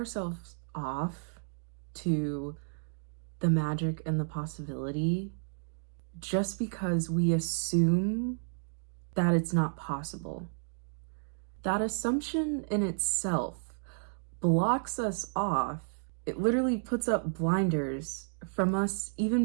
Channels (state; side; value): silent; left; digital silence